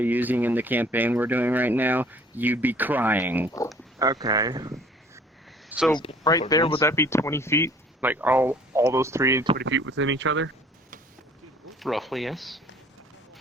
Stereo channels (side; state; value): both; normal; correlation 0.54